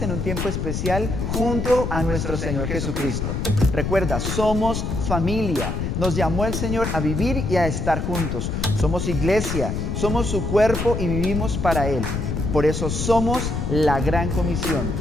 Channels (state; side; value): noise; left; rumble, 2 dB below the sound